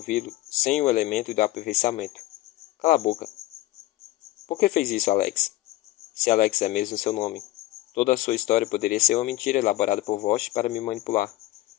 sem o elemento do aperfeiçoamento. Cala a boca. Por que fez isso, Alex? Se Alex é mesmo seu nome. Toda a sua história poderia ser uma mentira elaborada por Vosch para me manipular.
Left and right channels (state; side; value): quieter; right; 17.1 dB